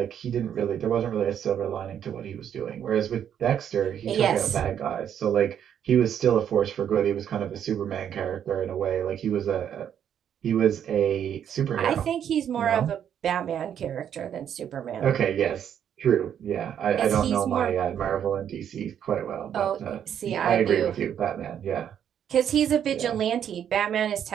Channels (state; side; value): quieter; left; 9.2 dB